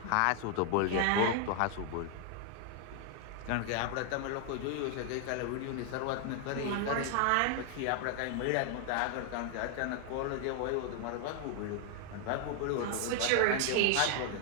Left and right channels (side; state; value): both; different; correlation 0.00